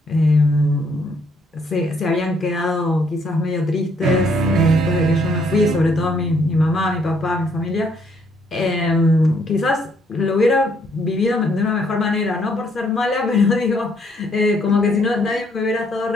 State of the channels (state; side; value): normal; both; correlation 0.69